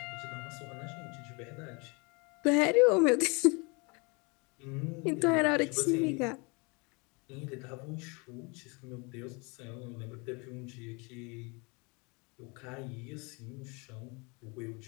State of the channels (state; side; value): quieter; right; 29.8 dB